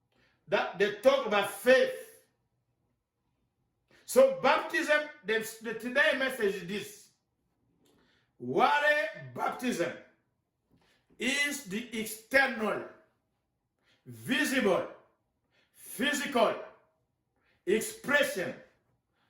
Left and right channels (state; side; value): identical; both; correlation 1.00